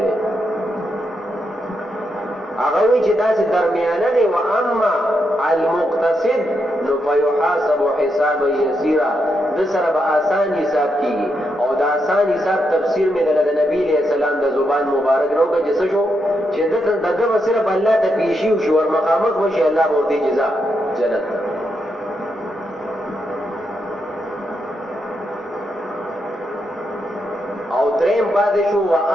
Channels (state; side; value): normal; both; correlation 0.82